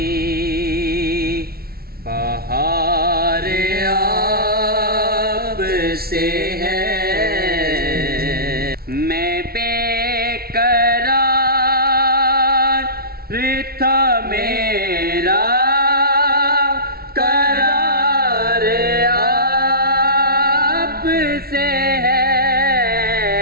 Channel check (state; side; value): late; left; 0.44 ms